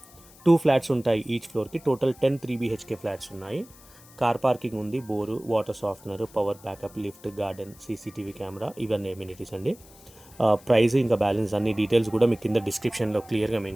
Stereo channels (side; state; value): left; noise; hiss, 23 dB below the sound